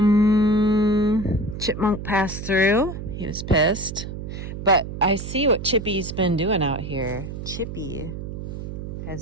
Chipmunk passed through. He was pissed. But I see what Chippy's been doing out here. Chippy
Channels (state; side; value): noise; right; hum, 8 dB below the sound